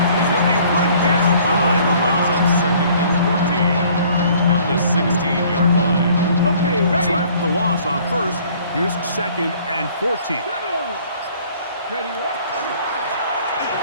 He's going to be run down behind the line. 2nd and 14 at the 16-yard line. Okay, ready. So after the loss on 1st, here's 2nd and 14. Ready.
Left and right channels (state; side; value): inverted; both; correlation -0.56